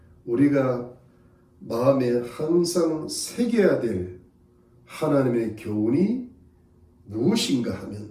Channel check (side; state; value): both; identical; correlation 1.00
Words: 우리가 마음에 항상 새겨야 될 하나님의 교훈이 무엇인가